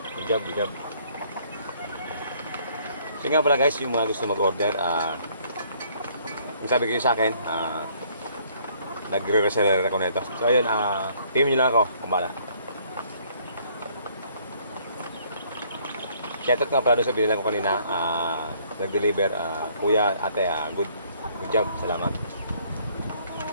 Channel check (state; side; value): inverted; both; correlation -0.63